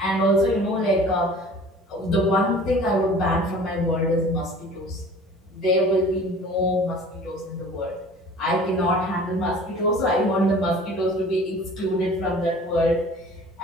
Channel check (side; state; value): both; normal; correlation 0.45